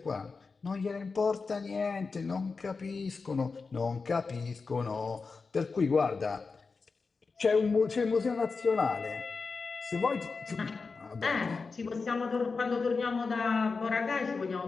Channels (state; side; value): quieter; right; 4.5 dB